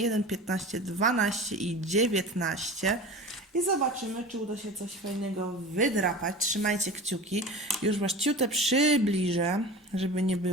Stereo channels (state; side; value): normal; both; correlation 0.35